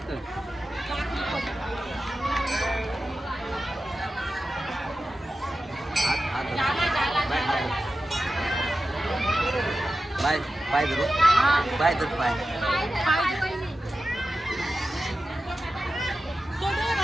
बाय बाय धरू बाय धर बाय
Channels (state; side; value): normal; both; correlation 0.93